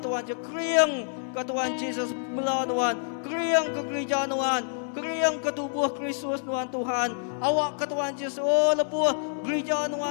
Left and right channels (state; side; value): silent; right; digital silence